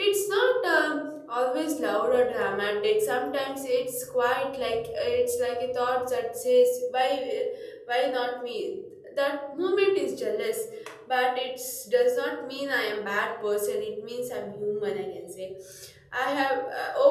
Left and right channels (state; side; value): identical; both; correlation 1.00